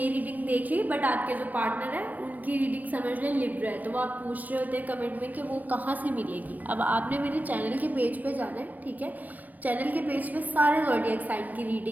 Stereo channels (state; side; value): late; left; 0.082 ms